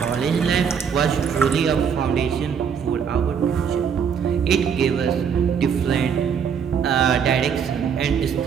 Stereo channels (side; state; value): left; quieter; 7.1 dB